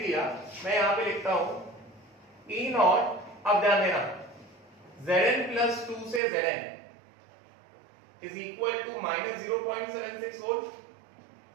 दिया, मैं यहाँ पे लिखता हूँ E नॉट। अब ध्यान देना, Zn plus 2 से Zn is equal to minus 0.76 volt.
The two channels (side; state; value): left; drops out; at 6.2 s